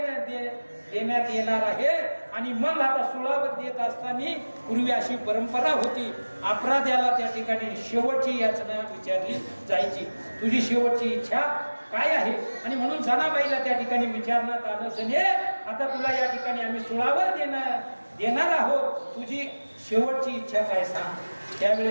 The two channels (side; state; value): both; inverted; correlation -1.00